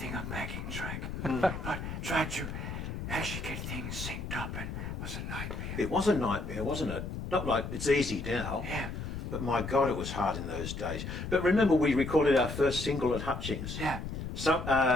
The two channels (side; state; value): left; noise; rumble, 6 dB below the sound